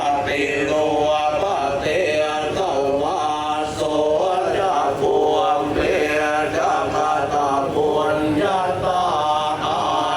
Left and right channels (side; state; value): both; identical; correlation 1.00